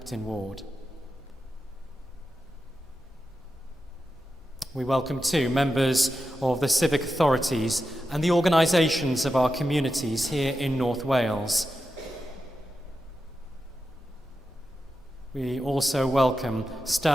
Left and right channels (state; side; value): normal; both; correlation 0.90